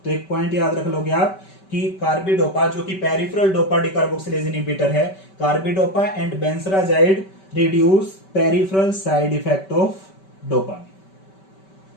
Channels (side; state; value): right; late; 5.2 ms